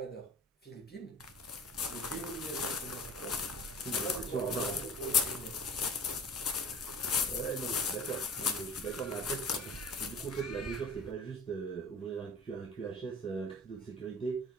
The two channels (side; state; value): both; normal; correlation 0.42